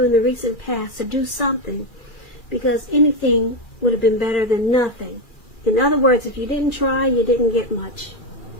in the recent past to do something, because anything would have been better than nothing. In other words, if you didn't try, you didn't get much.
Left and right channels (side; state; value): right; late; 2.4 ms